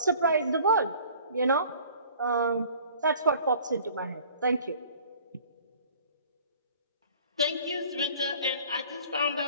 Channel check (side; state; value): both; inverted; correlation -0.51